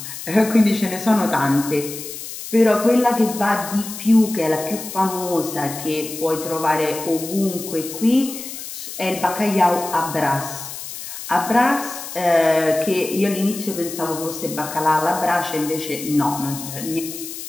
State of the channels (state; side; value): noise; left; hiss, 10 dB below the sound